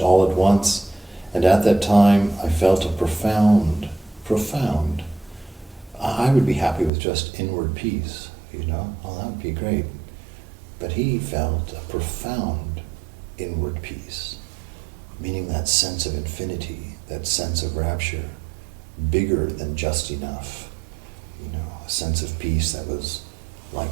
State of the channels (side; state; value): left; drops out; at 6.9 s